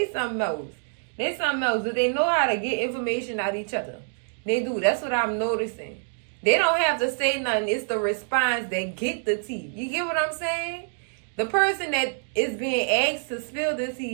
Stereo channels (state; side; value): silent; left; digital silence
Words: something else. They something else. Do they know how to get information out of each other? They do. That's what I'm noticing. They don't have to say nothing. It's the response that get the tea. You get what I'm saying? The person that is being asked to spill the